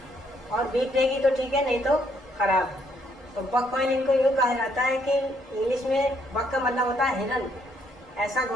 और बीप देगी तो ठीक है, नहीं तो खराब। तो बक कॉइल इनको यूँ कहा जाता है कि इंग्लिश में बक का मतलब होता है हिरन, ऐसा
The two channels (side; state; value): both; normal; correlation 0.70